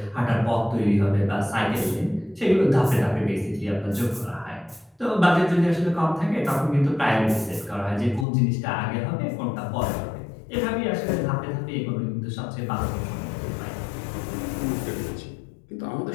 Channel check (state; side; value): drops out; right; at 8.2 s